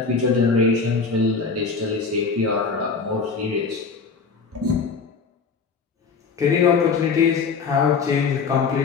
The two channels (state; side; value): quieter; right; 5.1 dB